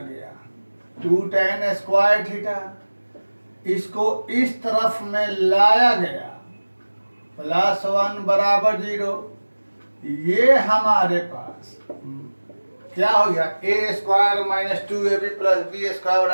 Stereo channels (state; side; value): inverted; both; correlation -1.00